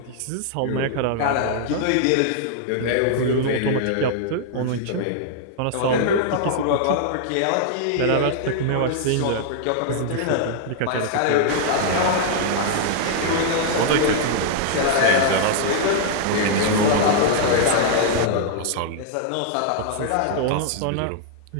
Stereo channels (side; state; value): both; different; correlation -0.01